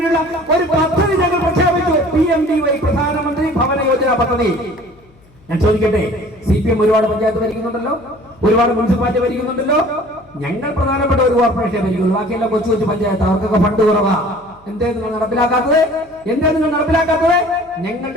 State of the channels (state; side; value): noise; left; hum, 29 dB below the sound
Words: ഒരു പദ്ധതി ഞങ്ങൾ പ്രഖ്യാപിച്ചു. PMDY, പ്രധാനമന്ത്രി ഭവന യോജന പദ്ധതി. ഞാൻ ചോദിക്കട്ടെ, CPM ഒരുപാട് പഞ്ചായത്ത് ഭരിക്കുന്നുണ്ടല്ലോ, ഒരുപാട് മുനിസിപ്പാലിറ്റി ഭരിക്കുന്നുണ്ടല്ലോ. ഞങ്ങൾ പ്രധാനപ്പെട്ട ഒരു കോർപ്പറേഷനെ ഭരിക്കുള്ളൂ, ബാക്കിയെല്ലാം കൊച്ചു കൊച്ചു പഞ്ചായത്ത്, അവർക്കൊക്കെ ഫണ്ട് കുറവാ. എന്തേ നിങ്ങൾ നടപ്പിലാക്കാത്തത്?